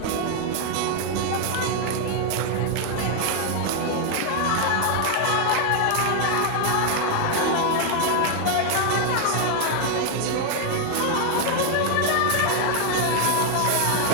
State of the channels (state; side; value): different; both; correlation 0.00